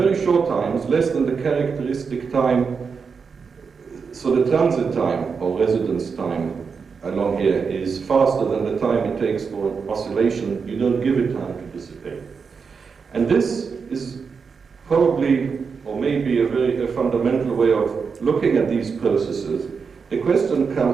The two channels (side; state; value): left; quieter; 5.6 dB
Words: short times, less than the characteristic time, so the transit time or residence time along here is faster than the time it takes for oscillation. You don't give it time to dissipate. And this is probably, or maybe a fundamental way of looking at these processes. The question